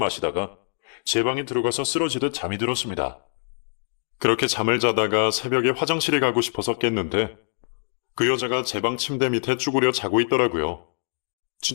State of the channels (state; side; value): silent; right; digital silence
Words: 제 방에 들어가서 쓰러지듯 잠이 들었습니다. 그렇게 잠을 자다가 새벽에 화장실에 가고 싶어서 깼는데 그 여자가 제 방 침대 밑에 쭈그려 자고 있더라고요.